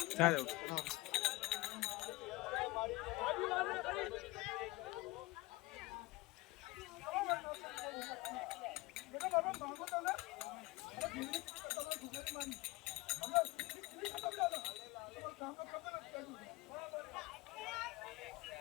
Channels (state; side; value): quieter; right; 21.4 dB